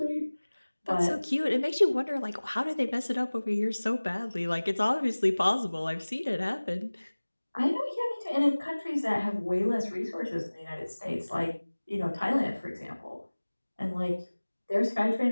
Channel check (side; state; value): both; inverted; correlation -1.00